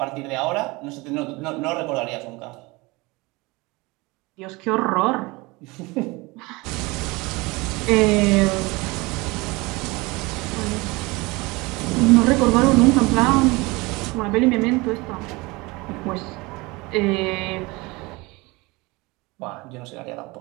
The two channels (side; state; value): left; quieter; 24.0 dB